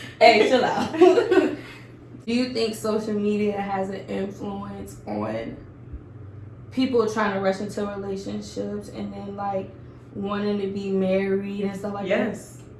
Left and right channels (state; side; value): identical; both; correlation 1.00